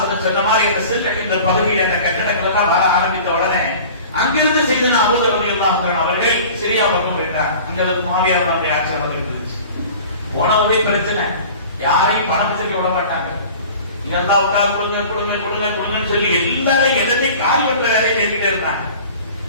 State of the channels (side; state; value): both; inverted; correlation -0.42